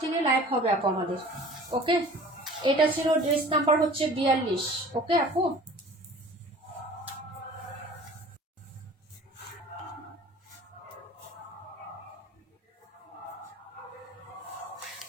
থেকে লাইভ হবে আপু আমাদের। ওকে, এটা ছিল ড্রেস নাম্বার হচ্ছে 42। ওকে আপু,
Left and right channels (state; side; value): normal; both; correlation 0.45